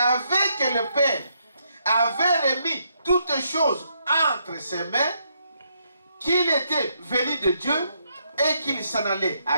que le Père avait remis toutes choses entre ses mains, qu'il était venu de Dieu et qu'il s'en allait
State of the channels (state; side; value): inverted; both; correlation -0.76